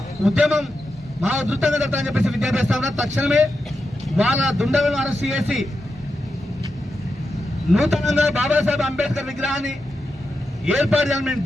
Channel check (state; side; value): normal; both; correlation 0.88